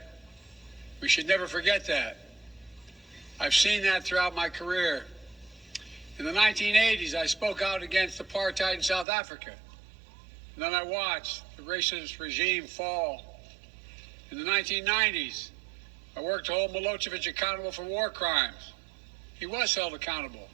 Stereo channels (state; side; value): drops out; left; at 9.1 s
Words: We should never forget that. I've seen that throughout my career. In the 1980s, I spoke out against apartheid in South Africa. And then I watched the racist regime fall. In the 1990s, I worked to hold Milosevic accountable for war crimes. He was held accountable.